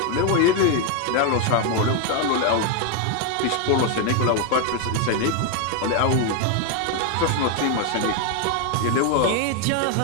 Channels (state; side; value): different; both; correlation 0.01